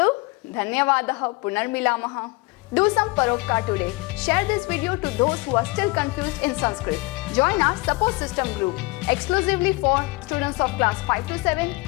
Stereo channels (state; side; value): quieter; right; 24.4 dB